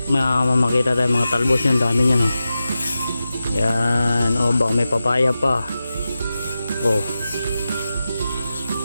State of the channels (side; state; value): both; inverted; correlation -0.93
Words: tayo mga talbos yan, dami niyan oh. Yan, oh baka may papaya pa. Oh.